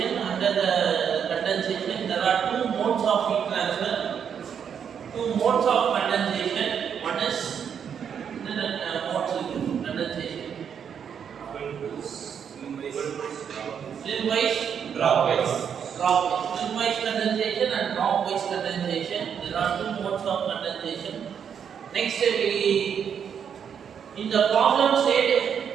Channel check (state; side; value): quieter; left; 7.7 dB